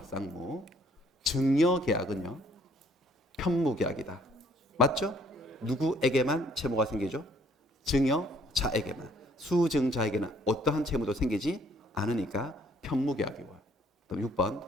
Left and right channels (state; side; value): normal; both; correlation 0.63